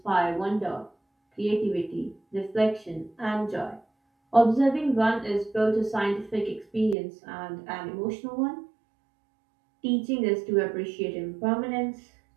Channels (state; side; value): drops out; left; at 7.0 s